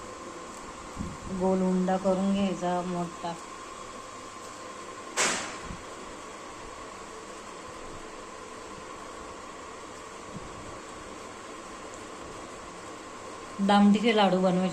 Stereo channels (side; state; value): both; identical; correlation 1.00